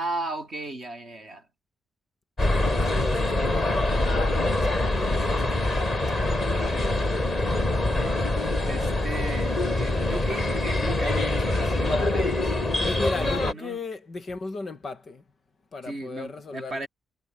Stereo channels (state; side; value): normal; both; correlation 0.85